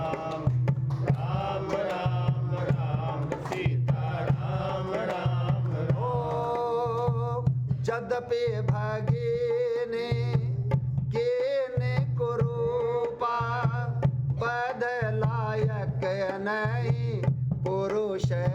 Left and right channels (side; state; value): both; identical; correlation 1.00